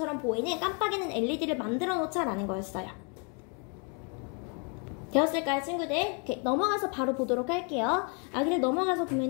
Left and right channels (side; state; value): right; quieter; 37.3 dB